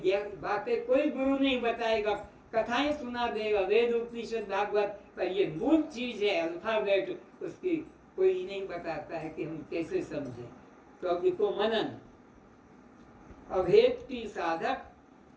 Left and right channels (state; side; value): identical; both; correlation 1.00